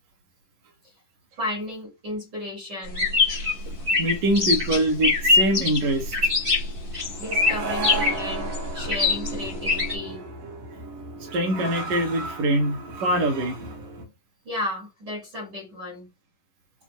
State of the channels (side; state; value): left; late; 10 ms